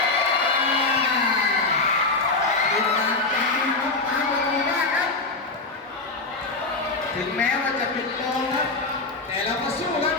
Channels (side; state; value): right; quieter; 3.6 dB